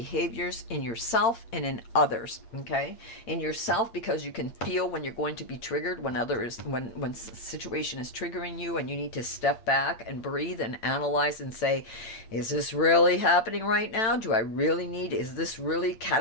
in yourself and in others, okay? In yourself, because you can feel when you're going to be triggered, when situation is triggering you, and you need to step back and breathe and analyze and say, is this really happening right now? Do I really need, is this really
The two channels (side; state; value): right; late; 8.9 ms